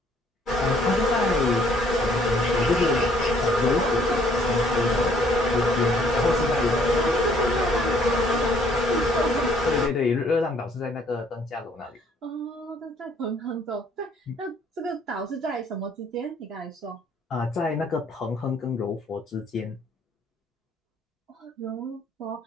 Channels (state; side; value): normal; both; correlation 0.62